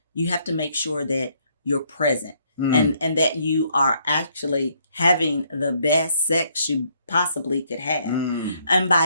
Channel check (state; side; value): inverted; both; correlation -0.69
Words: you have to make sure that you're present and that you are actually having the best sex you possibly could have. And